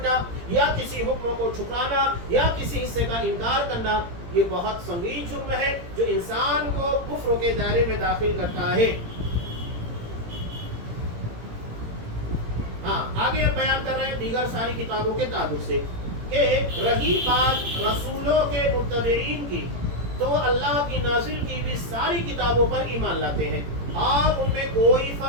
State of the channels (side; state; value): left; late; 17 ms